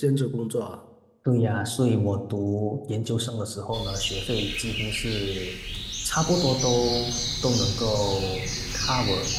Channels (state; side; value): identical; both; correlation 1.00